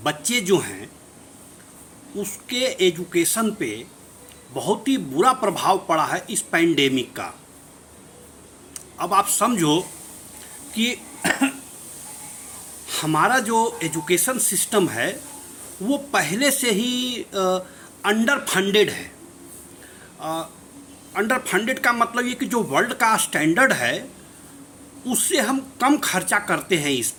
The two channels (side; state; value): both; identical; correlation 1.00